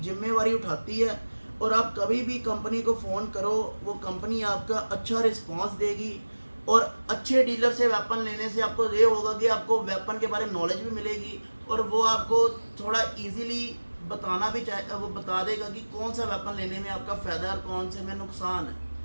जिम्मेवारी उठाती है। और आप कभी भी कंपनी को फ़ोन करो वो कंपनी आपका अच्छा रिस्पांस देगी। और अच्छे डीलर से वेपन लेने से आपको ये होगा कि आपको वेपन के बारे में नॉलेज भी मिलेगी और वो आपको थोड़ा इजीली बताना भी चाहे, वो बता देगा कि कौन सा वेपन लेने में आपका फ़ायदा है और कौन से में नुकसान है।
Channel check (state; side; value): inverted; both; correlation -1.00